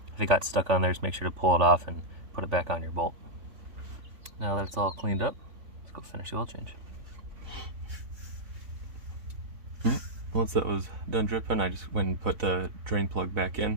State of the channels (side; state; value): left; late; 3.4 ms